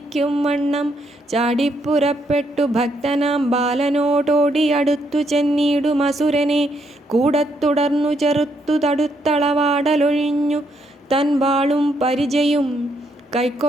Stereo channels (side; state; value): both; normal; correlation 0.75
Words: വണ്ണം ചാടിപ്പുറപ്പെട്ടു ഭക്തനാം ബാലനോടോടിയടുത്തു ചെന്നിടുമസുരനെ കൂടത്തുടർന്നു ചെറുത്തു തടുത്തളവാടലൊഴിഞ്ഞു തൻ വാളും പരിചയും